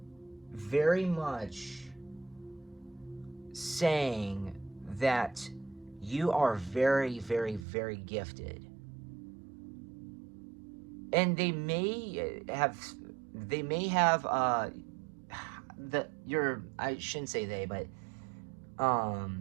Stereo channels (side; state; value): left; drops out; at 7.7 s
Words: very much saying that you are very, very, very gifted. And they may have I shouldn't say they, but